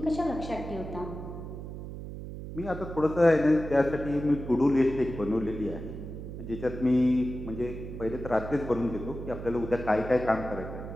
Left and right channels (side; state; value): right; noise; hum, 9 dB below the sound